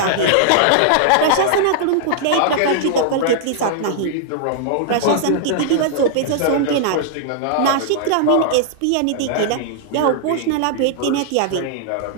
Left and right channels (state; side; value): different; both; correlation -0.01